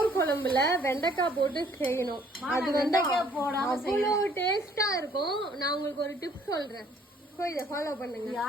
குழம்புல வெண்டைக்காய் போட்டு செய்யணும். அது வெண்டைக்காய் போடாம அவ்வளவு டேஸ்டா இருக்கும். நான் உங்களுக்கு ஒரு டிப் சொல்றேன், இதை ஃபாலோ பண்ணுங்க.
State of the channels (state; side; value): normal; both; correlation 0.61